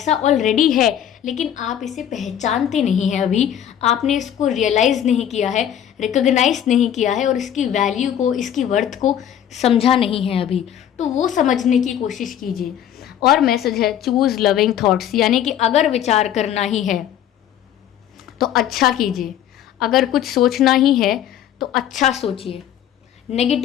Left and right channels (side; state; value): right; quieter; 10.2 dB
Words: ऑलरेडी है, लेकिन आप इसे पहचानते नहीं हैं। अभी आपने इसको रियलाइज़ नहीं किया है, रिकॉग्नाइज नहीं किया है, और इसकी वैल्यू को, इसकी वर्थ को समझा नहीं है अभी। तो वो समझने की कोशिश कीजिए। और मैसेज है चूज़ लविंग थॉट्स, यानी कि अगर विचार करना ही है तो अच्छा कीजिए, अगर कुछ सोचना ही है तो अच्छा सोचिए,